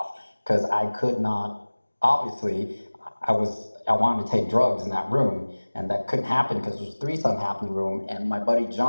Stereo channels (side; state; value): both; inverted; correlation -1.00